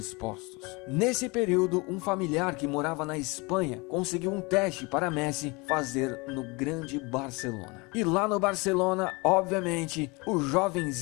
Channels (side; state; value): right; quieter; 27.0 dB